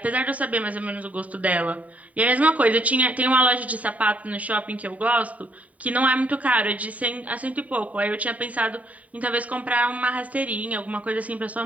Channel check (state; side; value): late; left; 0.070 ms